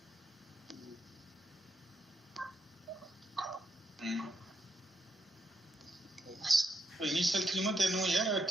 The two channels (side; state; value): both; normal; correlation 0.80